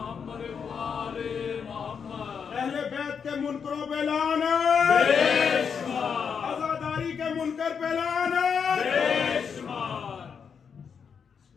मुनकरों पे लाना, आजादारी के मुनकर पे लाना।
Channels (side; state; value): right; quieter; 6.6 dB